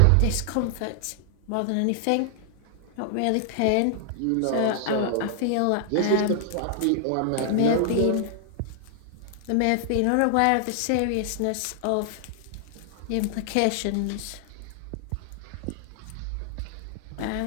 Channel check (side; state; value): both; different; correlation -0.01